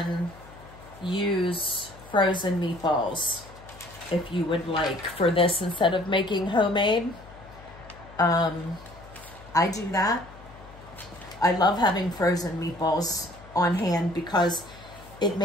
use frozen meatballs if you would like for this instead of making homemade. I do that. I love having frozen meatballs on hand because it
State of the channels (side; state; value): left; noise; hum, 20 dB below the sound